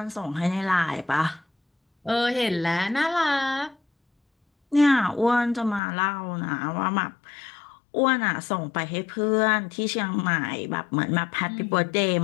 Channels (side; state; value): right; drops out; at 5.8 s